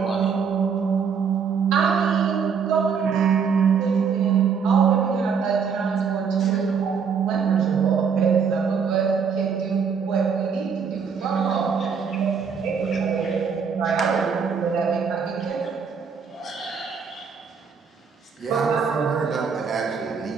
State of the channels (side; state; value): left; quieter; 6.3 dB